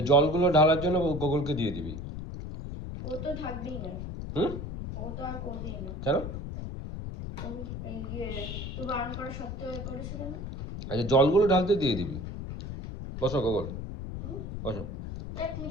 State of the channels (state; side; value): noise; left; rumble, 7 dB below the sound